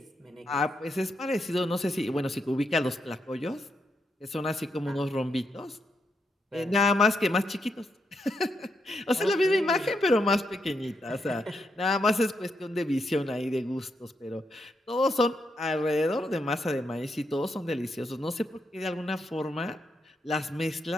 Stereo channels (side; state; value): both; normal; correlation 0.81